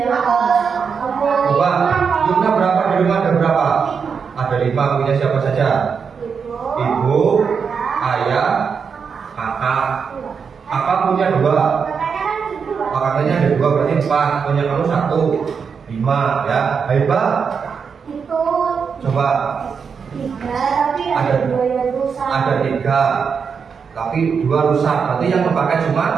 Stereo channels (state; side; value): quieter; left; 6.1 dB